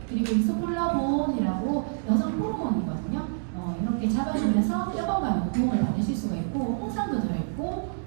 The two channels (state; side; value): silent; left; digital silence